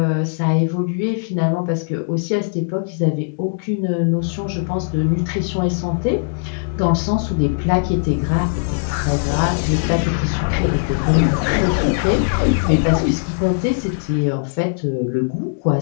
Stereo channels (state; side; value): silent; right; digital silence